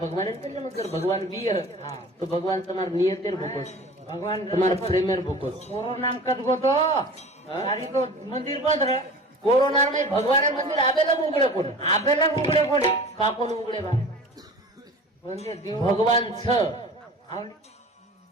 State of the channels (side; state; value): both; normal; correlation 0.40